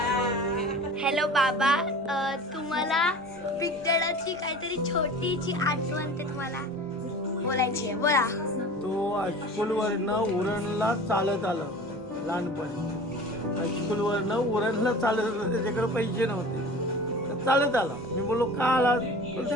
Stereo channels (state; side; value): normal; both; correlation 0.39